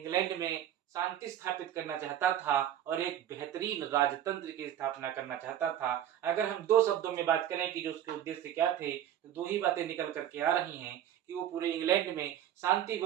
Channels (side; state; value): left; quieter; 10.9 dB